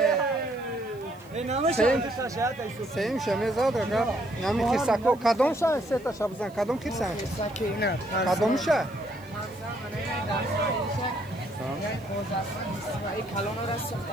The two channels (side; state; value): right; noise; hiss, 28 dB below the sound